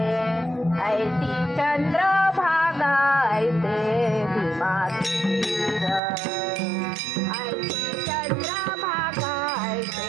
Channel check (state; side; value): drops out; left; at 6.0 s